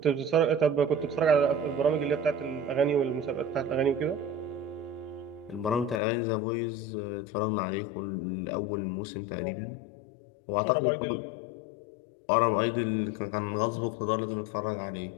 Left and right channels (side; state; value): right; drops out; at 6.0 s